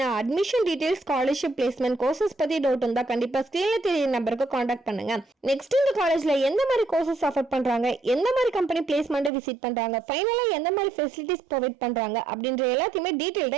admission details, scholarship, placement, courses பத்தி டவுட் இருந்தா கண்டிப்பா ஸ்கிரீன்ல தெரிய நம்பருக்கு கான்டாக்ட் பண்ணுங்க. நெக்ஸ்ட் இந்த காலேஜ்ல எந்த மாதிரி கோர்சஸ் ஆஃபர் பண்றாங்க, எந்த மாதிரி கம்பெனி பிளேஸ்மெண்ட் விசிட் பண்றாங்க, ஃபைனலா எந்த மாதிரி ஃபெசிலிட்டிஸ் ப்ரொவைட் பண்றாங்க அப்படின்ற எல்லாத்தையுமே டீடைல்டா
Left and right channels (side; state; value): left; drops out; at 9.3 s